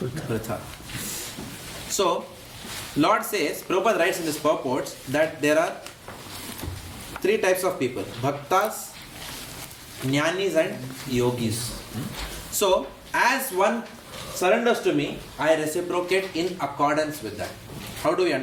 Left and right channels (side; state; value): both; identical; correlation 1.00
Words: So, Lord says, Prabhupada writes in his purports that there are three types of people: Bhaktas, Jnanis and Yogis. So, as one surrenders to me, I reciprocate in accordance with that. How do we